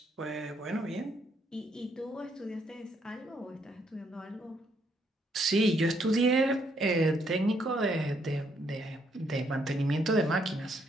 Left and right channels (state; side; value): normal; both; correlation 0.72